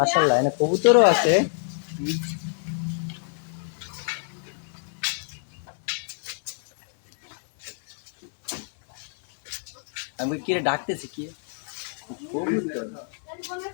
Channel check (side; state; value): right; silent; 57 dB below the other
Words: এনে কবুতরও আছে আমি কি রে ডাকতেছি কি কবুতর